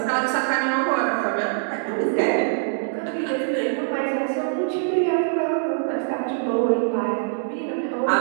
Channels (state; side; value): silent; left; digital silence